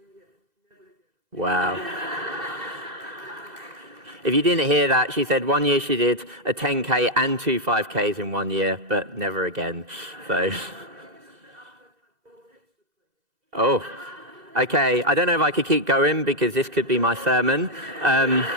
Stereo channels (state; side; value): late; left; 2.0 ms